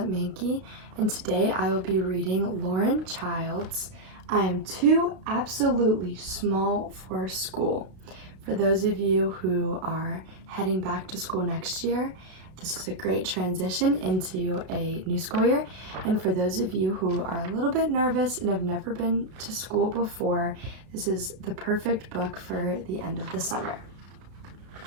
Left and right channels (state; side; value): late; left; 32 ms